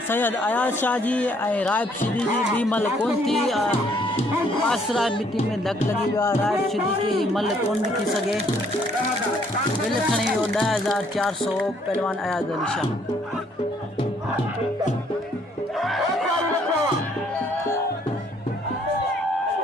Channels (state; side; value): normal; both; correlation 0.65